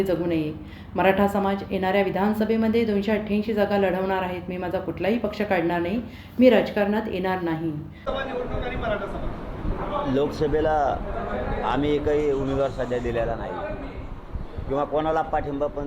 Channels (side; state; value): both; identical; correlation 1.00